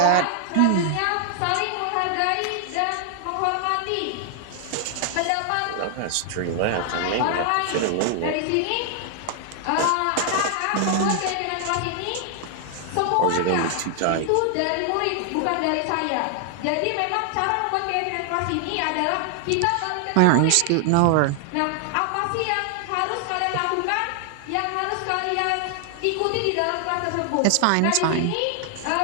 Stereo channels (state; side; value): different; both; correlation 0.00